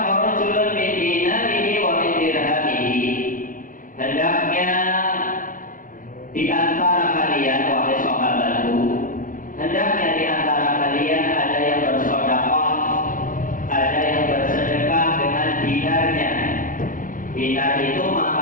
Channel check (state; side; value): late; right; 0.39 ms